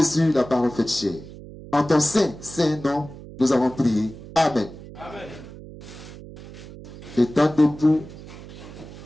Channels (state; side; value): noise; right; hum, 15 dB below the sound